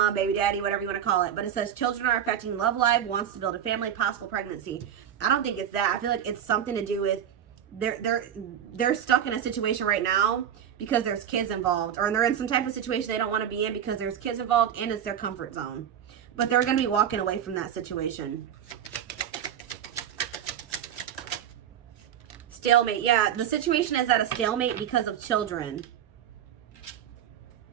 baby daddy, whatever you want to call it. But it says children are affecting love life, wants to build a family, possible pregnancy. I don't think it's that. I feel like it's something to do with they're stuck in a situation right now because there's kids involved, or they're in some type of situation they don't want to be in because there's kids involved and it's their comfort zone. But they're going to be walking away from that situation. Stalemate. Yeah, the situation is at a stalemate because of children.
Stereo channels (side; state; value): left; quieter; 9.5 dB